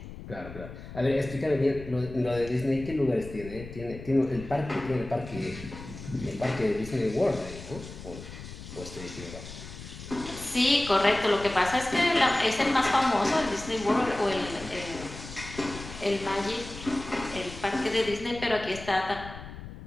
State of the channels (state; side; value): noise; left; rumble, 13 dB below the sound